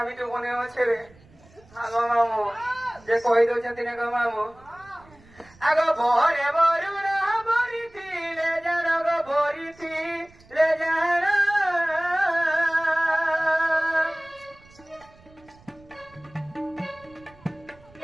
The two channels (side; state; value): right; noise; rumble, 26 dB below the sound